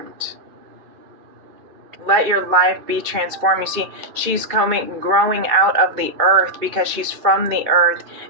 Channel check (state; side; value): late; left; 2.3 ms